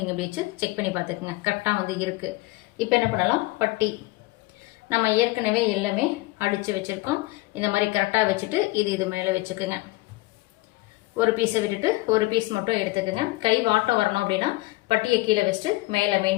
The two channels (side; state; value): right; quieter; 21.1 dB